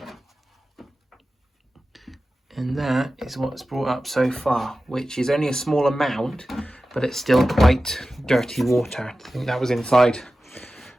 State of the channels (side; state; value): both; normal; correlation 0.94